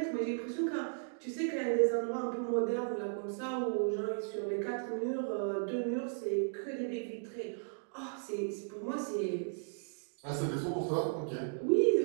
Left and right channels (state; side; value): silent; left; digital silence